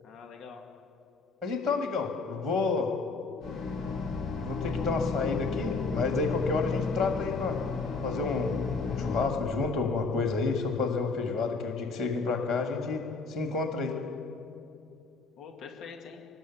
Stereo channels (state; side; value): quieter; right; 4.0 dB